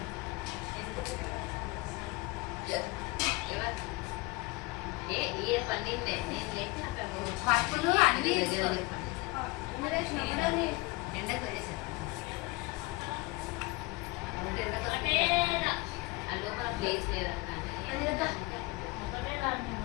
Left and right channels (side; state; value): right; quieter; 23.9 dB